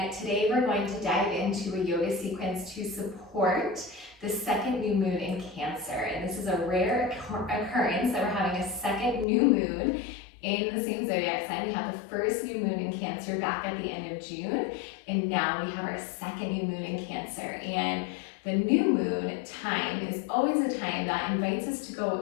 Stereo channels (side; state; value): right; drops out; at 9.2 s